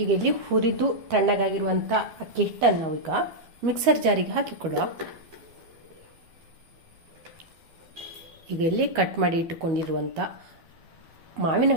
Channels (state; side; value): late; left; 12 ms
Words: ಈಗ ಇಲ್ಲಿ ಹುರಿದು ತಣ್ಣಗಾಗಿರುವಂಥ ಅಕ್ಕಿ ಹಿಟ್ಟನ್ನು ನಾವೀಗ ಮಿಕ್ಸರ್ ಜಾರಿಗೆ ಹಾಕಿಕೊಳ್ಳುವ. ಈಗ ಇಲ್ಲಿ ಕಟ್ ಮಾಡಿ ಇಟ್ಟುಕೊಂಡಿರುವಂಥ ಮಾವಿನ